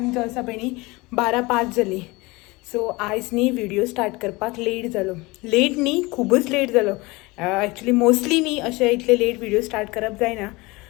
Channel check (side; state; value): right; quieter; 23.4 dB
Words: जो आसा पळय न्ही 12:05 जाली. सो आयज न्ही व्हिडिओ स्टार्ट करपाक लेट जालो. लेट न्ही खूबच लेट जालो. एक्चुअली मोस्टली न्ही अशें इतले लेट व्हिडिओ स्टार्ट करप जायना.